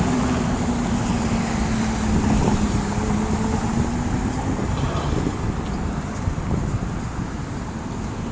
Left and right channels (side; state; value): both; identical; correlation 1.00